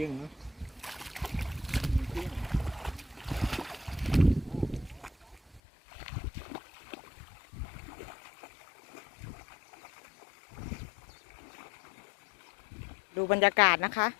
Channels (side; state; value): right; drops out; at 5.6 s